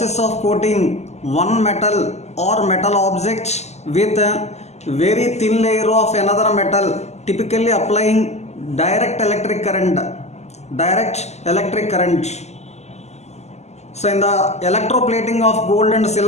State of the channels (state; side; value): late; right; 0.32 ms